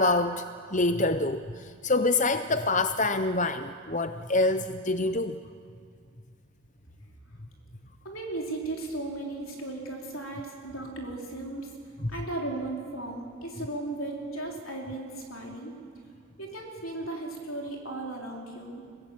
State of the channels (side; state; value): both; normal; correlation 0.06